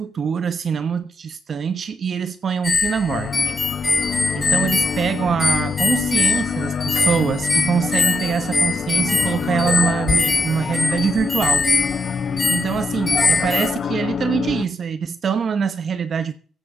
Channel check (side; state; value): both; normal; correlation 0.83